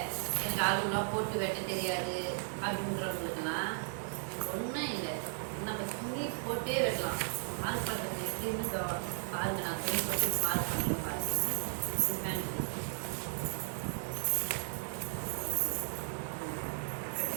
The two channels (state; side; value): silent; left; 54 dB below the other